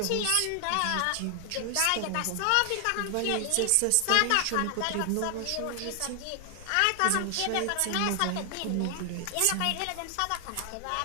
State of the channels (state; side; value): different; both; correlation 0.00